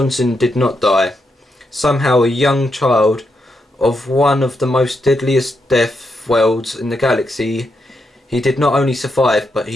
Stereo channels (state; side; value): normal; both; correlation 0.82